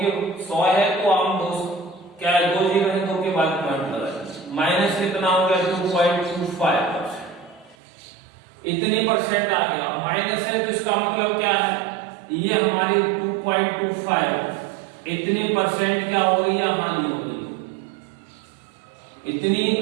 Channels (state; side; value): drops out; left; at 7.8 s